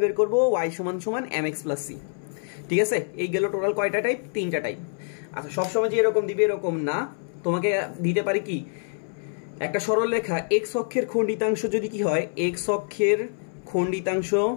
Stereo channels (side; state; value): right; silent; 61 dB below the other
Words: বের করব? y সমান সমান mx প্লাস c। ঠিক আছে, এই গেল টোটাল কয়টা টাইপ? তিনটা টাইপ। আচ্ছা, সবসময় যে এরকম দিবে এরকম না, তোমাকে দিতে পারি কি একটা সরলরেখা x অক্ষের খণ্ডিতাংশ যদি কি হয়? x অক্ষের খণ্ডিতাংশ